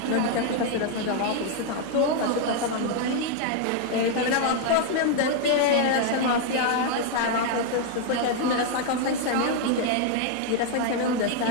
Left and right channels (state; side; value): different; both; correlation 0.00